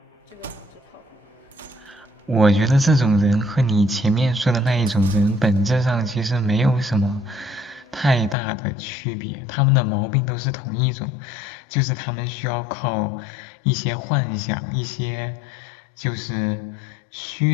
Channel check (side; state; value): right; drops out; at 8.3 s